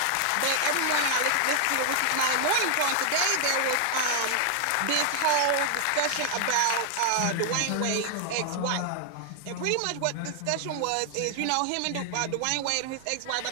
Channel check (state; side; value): different; both; correlation 0.00